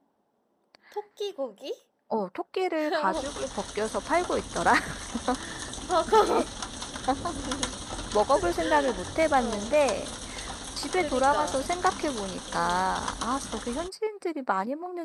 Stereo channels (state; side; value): identical; both; correlation 1.00